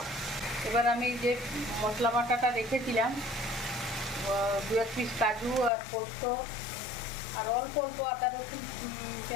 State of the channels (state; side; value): drops out; right; at 5.7 s